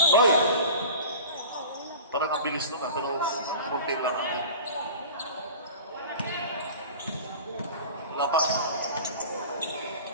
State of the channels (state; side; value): inverted; both; correlation -0.38